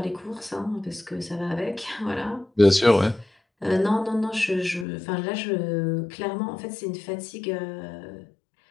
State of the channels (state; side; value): drops out; right; at 4.9 s